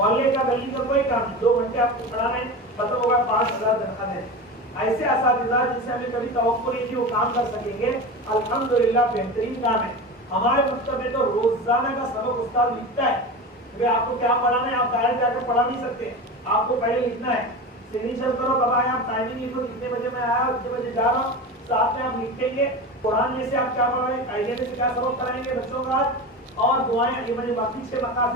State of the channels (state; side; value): normal; both; correlation 0.27